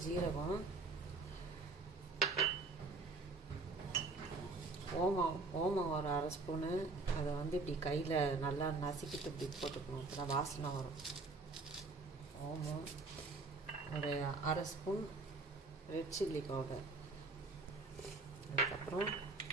ஜீரகம், ஓமம் ஒரு அரை ஸ்பூனு. அதை இப்படி கையில் நல்லா நசுக்கிட்டு இப்படி போட்டுக்கணும், அப்போ தான் வாசனை வரும். ஓமம் ஒரு அரை ஸ்பூன், ரெட் சில்லி பவுடர். அதுக்கப்புறம்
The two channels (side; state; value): left; quieter; 3.6 dB